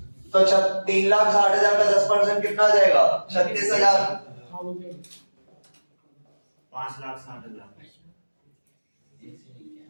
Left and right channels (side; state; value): both; inverted; correlation -1.00